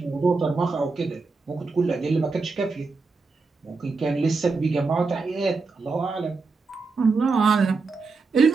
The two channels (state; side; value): quieter; left; 4.2 dB